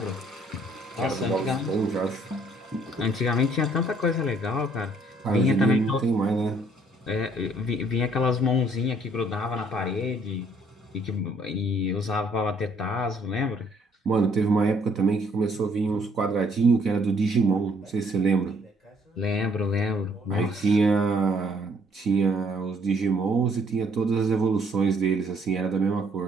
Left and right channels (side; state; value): both; normal; correlation 0.64